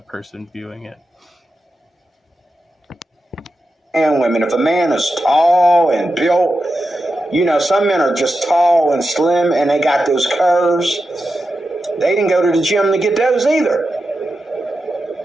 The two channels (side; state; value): both; normal; correlation 0.90